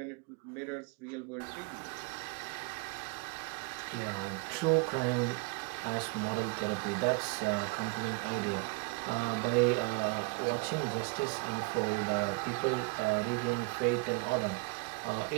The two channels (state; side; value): quieter; left; 27.7 dB